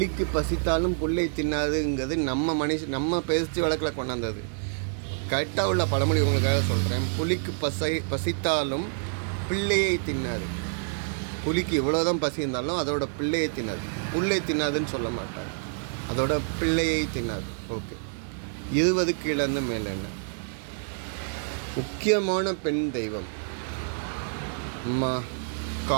பசித்தாலும் புல்லை தின்னாதுங்கிறது நம்ம பேச்சு வழக்கில் கொண்டாந்தது. கரெக்டாக உள்ள பழமொழி உங்களுக்காக சொல்கிறேன். புலிக்கு பசித்தாலும் பிள்ளையை தின்னாது. புலிக்கு இவ்வளோதான் பசி இருந்தாலும் அதோட பிள்ளையை தின்னாது. புல்லை தின்னாதுன்னு சொல்ல மாட்டாங்க, அதோட பிள்ளையை தின்னாது. ஓகே. 20 கீழேருந்து மேலே என்ன, முக்கியமான பெண் தெய்வம் அம்மா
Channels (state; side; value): silent; left; digital silence